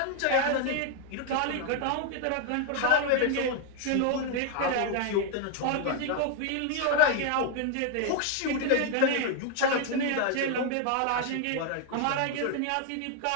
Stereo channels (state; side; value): different; both; correlation 0.00